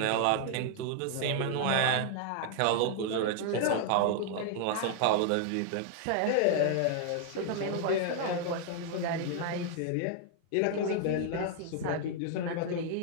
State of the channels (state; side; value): different; both; correlation -0.01